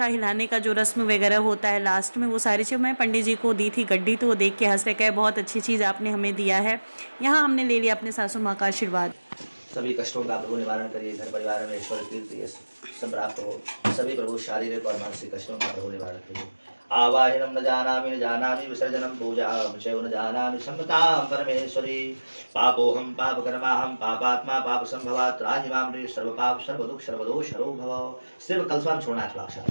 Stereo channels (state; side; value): inverted; both; correlation -1.00